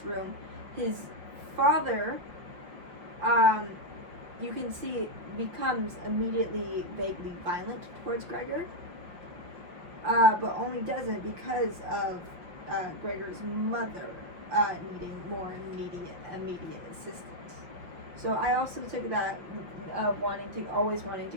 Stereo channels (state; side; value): late; left; 5.4 ms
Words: room, his father, you can see, becomes immediately vaguely violent towards Gregor, but only does it because of Gregor's mother needing more immediate assistance. So I also took that always wanting to